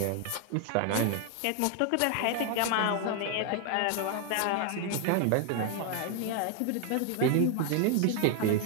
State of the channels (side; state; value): both; different; correlation 0.01